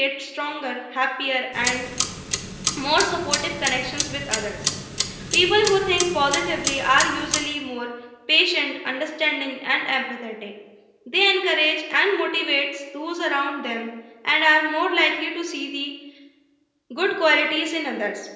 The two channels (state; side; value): identical; both; correlation 1.00